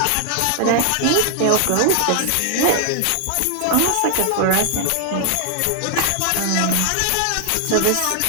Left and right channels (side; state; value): both; different; correlation 0.00